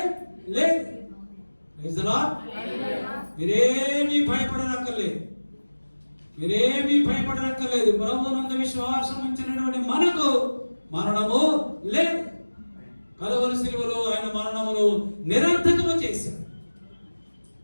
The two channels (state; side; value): inverted; both; correlation -1.00